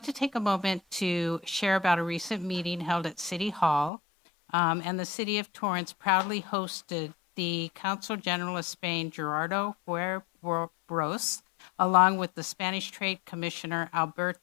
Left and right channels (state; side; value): drops out; right; at 3.9 s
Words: to take a moment to share about a recent meeting held at City Hall, and the City of Torrance proudly hosted the Consul General of Spain, Gerardo Huerros, along with the Spanish Trade Commissioner,